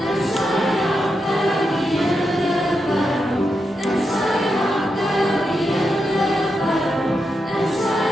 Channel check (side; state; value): both; normal; correlation 0.86